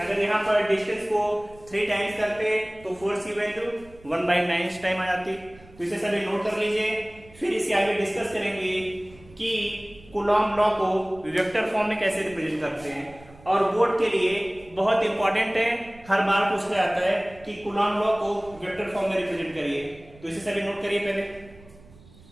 यहाँ पर डिस्टेंस को 3 टाइम्स करते तो फोर्स की वैल्यू 1/9 टाइम आ जाती। तो इसे सभी नोट कर लीजिए। फिर इसके आगे डिस्कस करेंगे कि कूलॉम लॉ को वेक्टर फॉर्म में कैसे रिप्रेजेंट करते हैं। और बोर्ड के लिए बहुत इंपॉर्टेंट है, हर बार पूछा जाता है कि कूलॉम लॉ को वेक्टर फॉर्म में रिप्रेजेंट करिए। तो इसे सभी नोट करिए, पहले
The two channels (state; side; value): noise; right; rumble, 23 dB below the sound